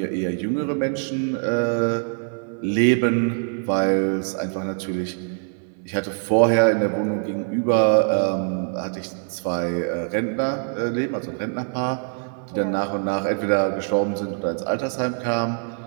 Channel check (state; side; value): silent; left; 58 dB below the other